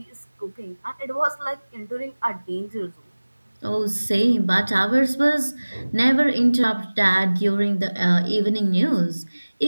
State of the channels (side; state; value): both; inverted; correlation -1.00